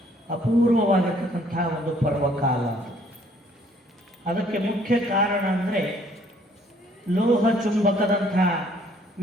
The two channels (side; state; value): both; normal; correlation 0.61